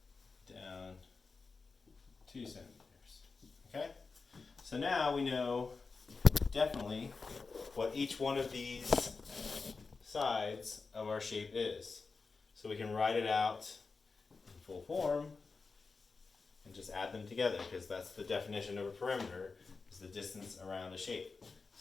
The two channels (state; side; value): quieter; right; 4.4 dB